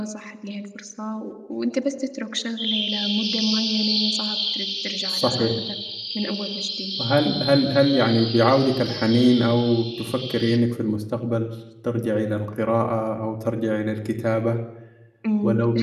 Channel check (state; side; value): identical; both; correlation 1.00